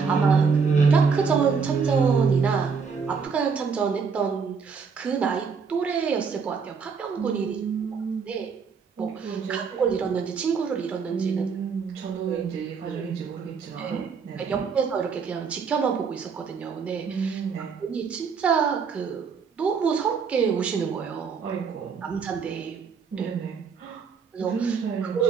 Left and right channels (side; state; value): left; quieter; 5.7 dB